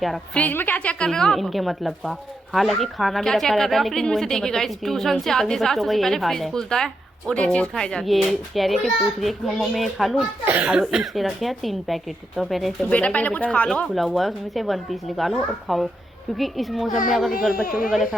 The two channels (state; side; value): normal; both; correlation 0.83